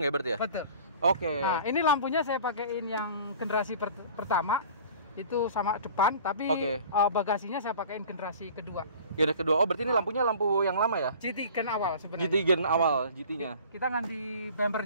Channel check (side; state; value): both; inverted; correlation -0.45